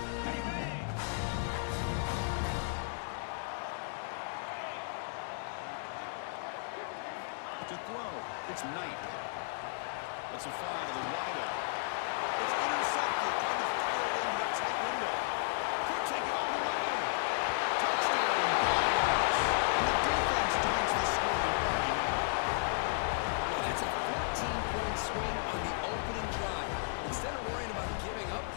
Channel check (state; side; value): silent; right; digital silence